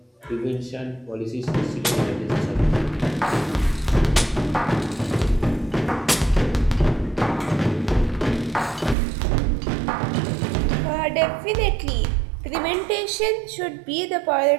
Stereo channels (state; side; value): drops out; left; at 9.0 s